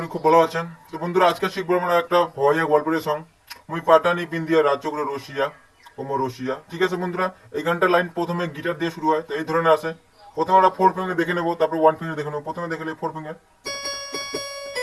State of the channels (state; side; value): identical; both; correlation 1.00